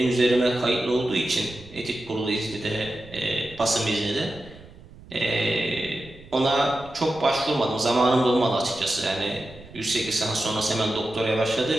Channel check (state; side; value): noise; right; rumble, 20 dB below the sound